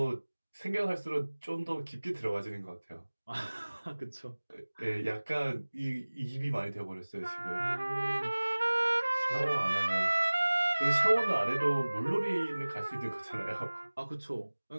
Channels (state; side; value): inverted; both; correlation -1.00